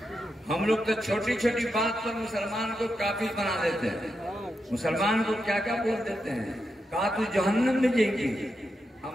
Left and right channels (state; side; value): normal; both; correlation 0.86